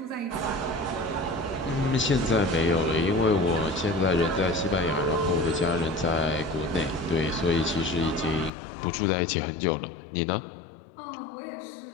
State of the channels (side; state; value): right; drops out; at 8.5 s